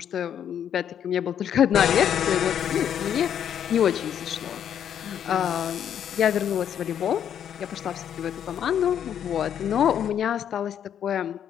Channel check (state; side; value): quieter; right; 9.3 dB